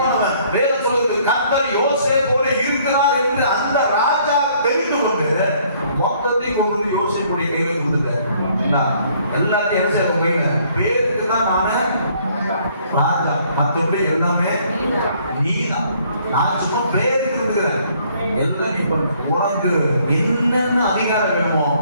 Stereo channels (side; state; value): both; inverted; correlation -0.63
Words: வேதம் சொல்றது கர்த்தர் யோசேப்போட இருக்கிறார் என்று அந்த ராஜா தெரிந்து கொண்டு மொத்தத்தையும் கொண்டு வந்து யோசேப்புடைய கையில கொடுத்தார். எல்லாத்தையும் யோசேப்பு கையில பேருக்கு தான் நானு ராஜா, மற்றபடி எல்லாமே நீதான். நான் சும்மா பேருக்கு இருக்கிறேன். எல்லாம் நீ பண்ணு. உனக்கு என்னென்ன அதிகாரம் வேணுமோ